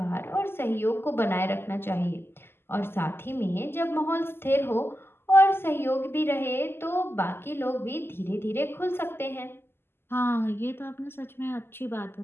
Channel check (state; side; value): late; right; 0.11 ms